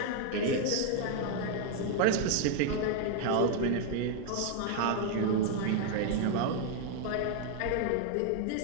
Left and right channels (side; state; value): both; different; correlation 0.00